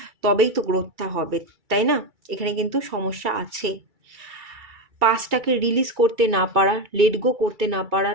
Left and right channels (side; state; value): left; late; 2.3 ms